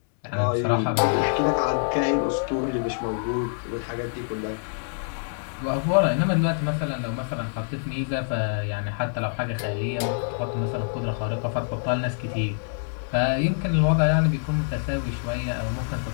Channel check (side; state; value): right; silent; 61 dB below the other